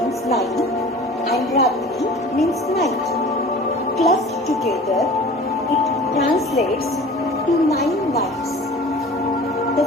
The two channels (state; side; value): normal; both; correlation 0.42